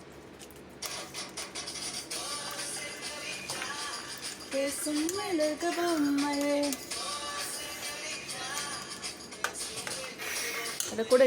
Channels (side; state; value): both; identical; correlation 1.00